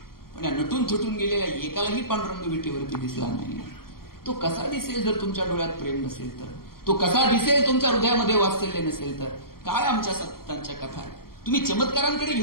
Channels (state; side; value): late; right; 0.93 ms